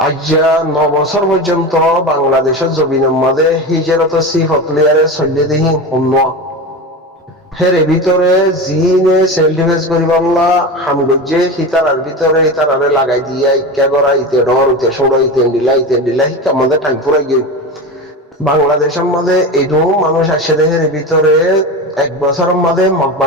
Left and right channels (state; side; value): normal; both; correlation 0.25